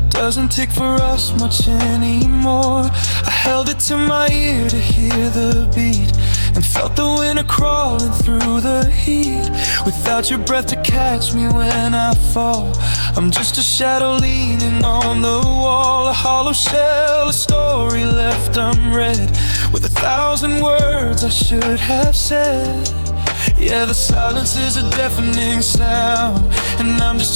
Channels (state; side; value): inverted; both; correlation -1.00